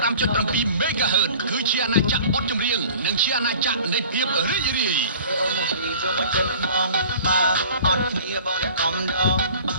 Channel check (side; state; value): both; inverted; correlation -0.46